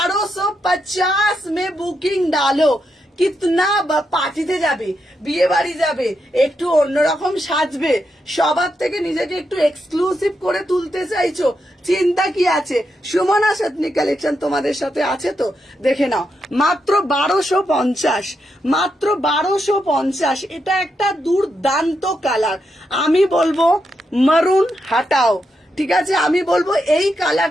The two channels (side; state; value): both; normal; correlation 0.83